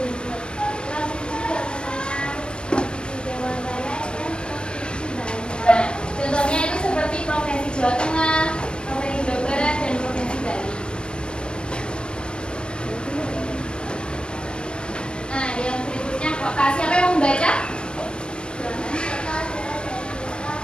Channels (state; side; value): late; right; 0.055 ms